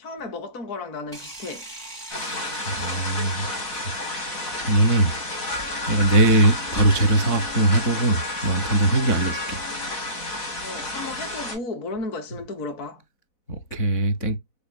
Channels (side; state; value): right; late; 4.0 ms